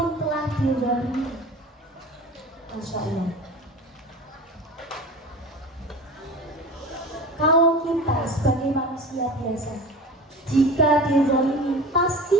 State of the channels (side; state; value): both; normal; correlation 0.35